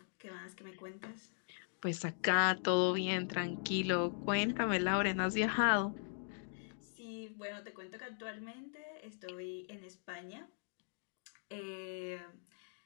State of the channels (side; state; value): right; silent; digital silence